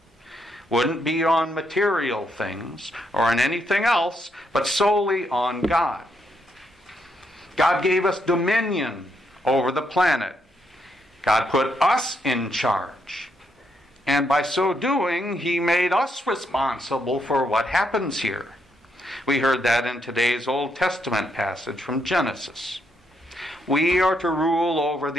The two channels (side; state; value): both; normal; correlation 0.77